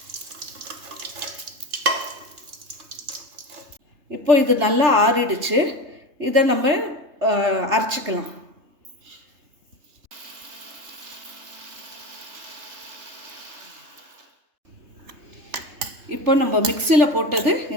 இப்போ இது நல்லா ஆறிடுச்சு. இதை நம்ம அரைச்சிக்கலாம். இப்போ நம்ம மிக்சியில் போட்டது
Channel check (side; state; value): left; late; 3.3 ms